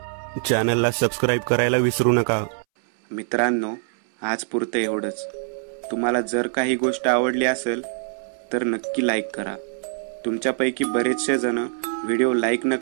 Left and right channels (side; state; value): left; silent; 63 dB below the other